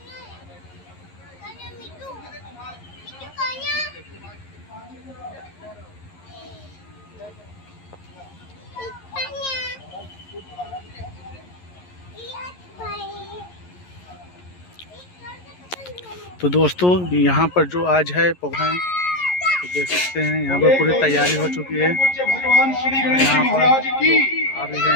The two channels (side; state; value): right; late; 11 ms